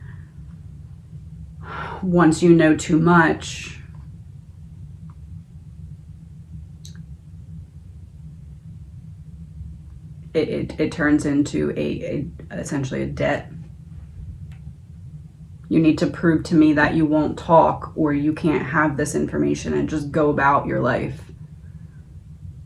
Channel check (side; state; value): both; identical; correlation 1.00